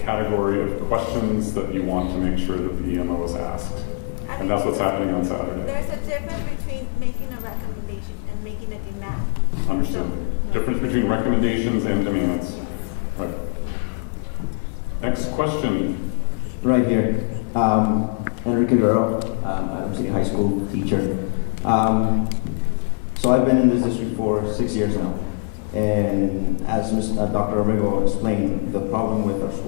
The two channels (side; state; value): right; silent; digital silence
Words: category of questions that you want to make sure that the EMO is asked. And that's what's happening on Saturday. There's a difference between making a recommendation and making a demand. Understood. Difference between recommendations and demands. Right. Next question. Right here. Enrique Guerrero, Adams City High School teacher. So I've been in this district for 6 years now. And as Dr. Romero explained, the problem with our